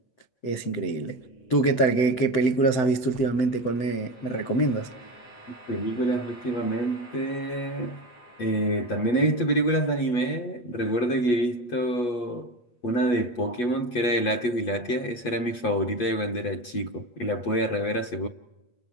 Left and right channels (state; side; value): late; right; 8.3 ms